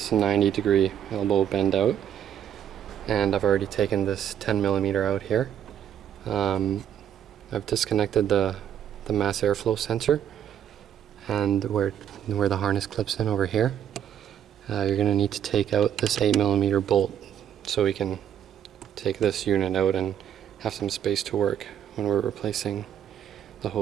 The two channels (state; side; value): quieter; left; 9.6 dB